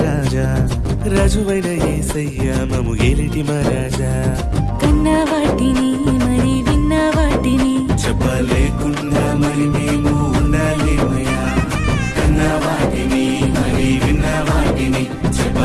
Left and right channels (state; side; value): identical; both; correlation 1.00